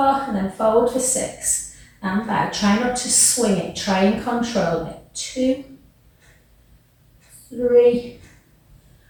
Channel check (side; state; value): both; identical; correlation 1.00